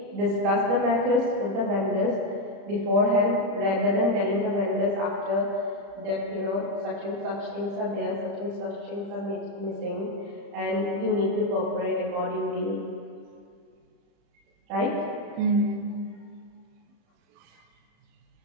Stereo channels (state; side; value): late; left; 35 ms